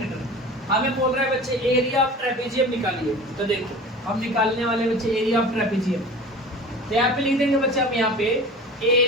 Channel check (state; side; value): normal; both; correlation 0.38